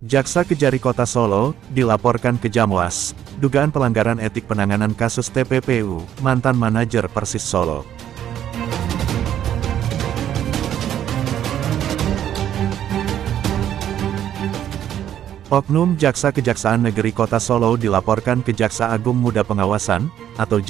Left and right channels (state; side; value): quieter; left; 10.7 dB